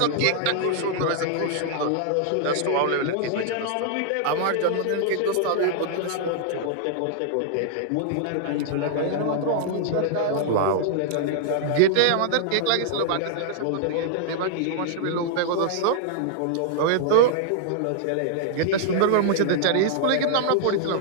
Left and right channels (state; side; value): different; both; correlation -0.01